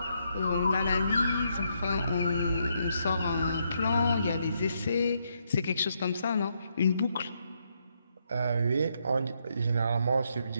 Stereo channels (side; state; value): both; inverted; correlation -0.77